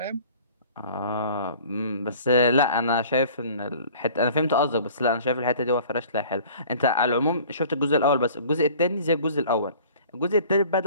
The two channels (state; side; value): inverted; both; correlation -0.48